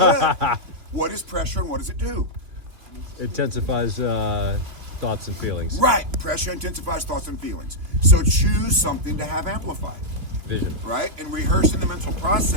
What is pressure and what does it do? Intensifies thoughts and feelings. Right. Pressure intensifies thoughts and feelings. So choose something to have amplified. Vision. Right? And rehearsing the mental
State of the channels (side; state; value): left; late; 2.8 ms